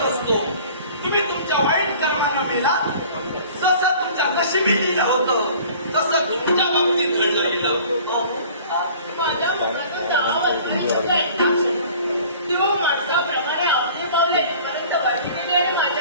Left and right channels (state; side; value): inverted; both; correlation -0.48